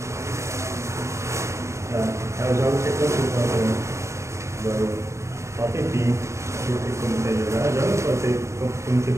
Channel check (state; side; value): late; left; 0.14 ms